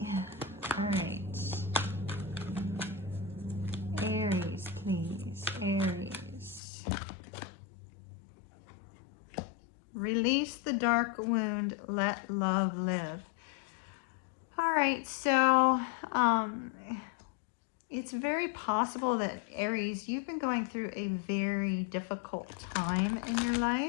All right. Aries, please. Aries. Release the dark wound. Let love live. All right, so it's very possible that Aries, you've been going through a very difficult time in your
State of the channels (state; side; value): drops out; right; at 6.6 s